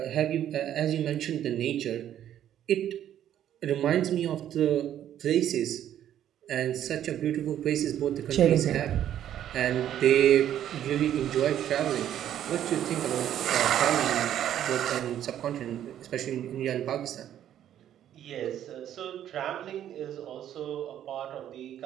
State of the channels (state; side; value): quieter; left; 10.9 dB